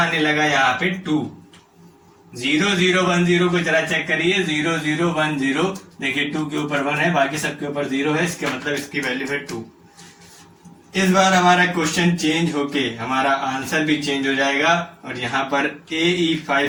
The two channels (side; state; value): both; identical; correlation 1.00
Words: लगा यहाँ पे 2। 0 0 1 0 को जरा चेक करिए, 0 0 1 0, देखिए 2 के ऊपर 1 है, बाकी सबके ऊपर 0 है, इसके मतलब इसकी वैल्यू है 2। इस बार हमारा क्वेश्चन चेंज होके हमारा आंसर भी चेंज हो जाएगा और यहाँ पर